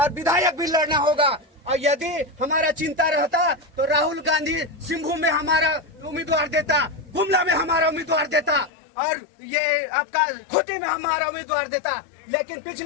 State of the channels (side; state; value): right; drops out; at 8.7 s